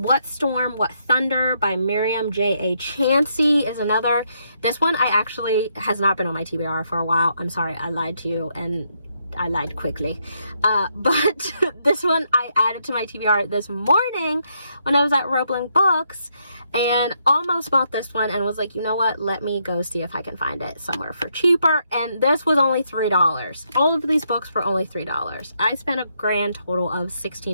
Storm, What Thunder by Miriam J.A. Chansey is another. This one has not been on my TBR for a while. I'm sorry, I lied to you, and I lied quickly. But this one I added to my TBR this morning when I was at Roebling Books, and almost bought this one and was like, you know what, let me go see if I can find it somewhere for cheaper. And this was only $3. All of these books were only $3. I spent a grand total of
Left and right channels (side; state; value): both; inverted; correlation -0.76